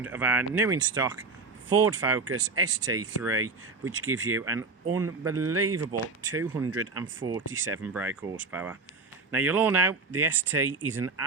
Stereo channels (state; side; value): quieter; left; 4.0 dB